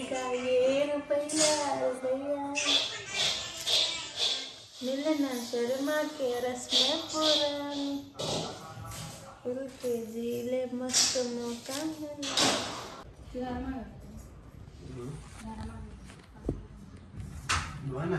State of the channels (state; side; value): identical; both; correlation 1.00